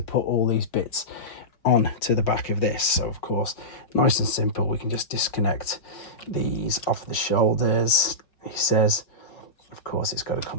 put all these bits on to the back of this. So of course, nice and simple, we can just disconnect these off the shoulders. He says, of course, it's got to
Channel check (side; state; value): right; late; 5.6 ms